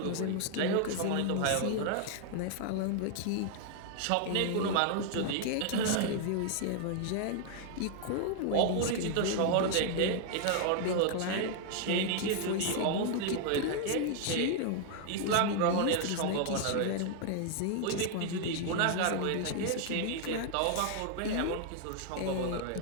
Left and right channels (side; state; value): both; different; correlation 0.00